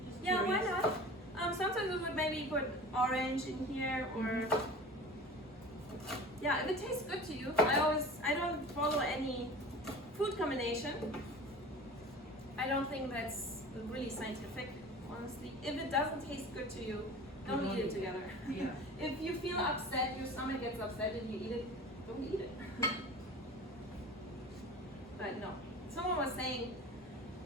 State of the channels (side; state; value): both; normal; correlation 0.38